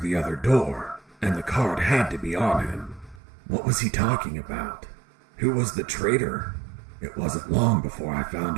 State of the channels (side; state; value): left; drops out; at 3.2 s